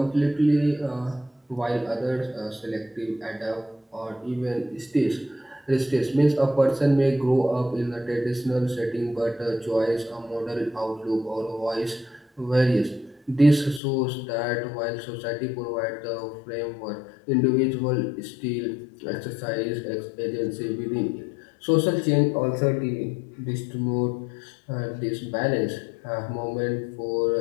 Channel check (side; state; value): right; drops out; at 13.8 s